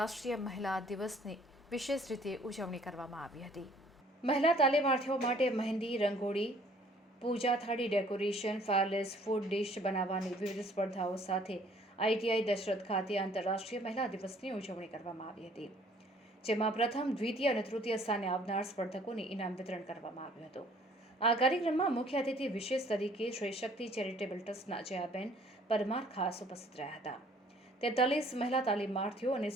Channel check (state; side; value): normal; both; correlation 0.58